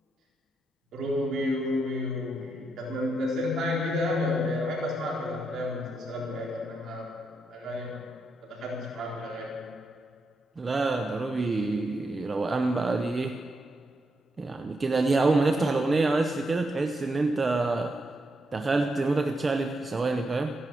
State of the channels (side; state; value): both; normal; correlation 0.82